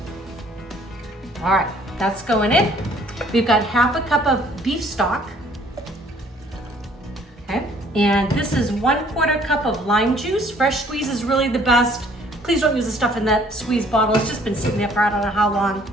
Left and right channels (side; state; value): both; normal; correlation 0.59